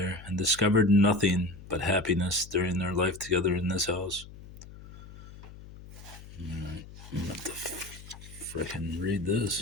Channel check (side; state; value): left; noise; hum, 17 dB below the sound